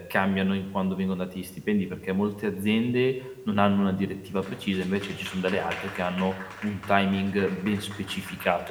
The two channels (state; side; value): identical; both; correlation 1.00